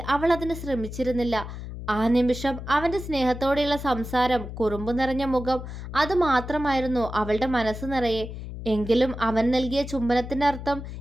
അവൾ അതിന് ശ്രമിച്ചിരുന്നില്ല. ആ നിമിഷം അവൻ്റെ സ്നേഹത്തോടെയുള്ള സംസാരം, കുറുമ്പ് നിറഞ്ഞ മുഖം, അതുമാത്രമായിരുന്നു അവളുടെ മനസ്സ് നിറയെ. എങ്കിലും അവൻ നൽകിയ ചുംബനത്തിൻ്റെ അർത്ഥം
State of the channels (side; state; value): left; noise; hum, 9 dB below the sound